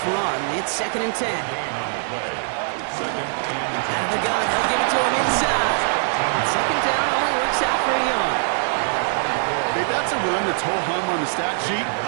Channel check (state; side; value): silent; left; digital silence